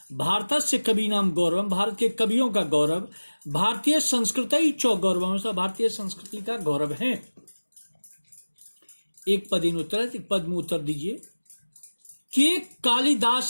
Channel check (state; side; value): inverted; both; correlation -1.00